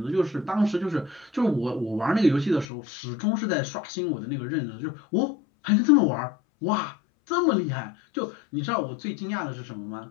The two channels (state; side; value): drops out; right; at 2.7 s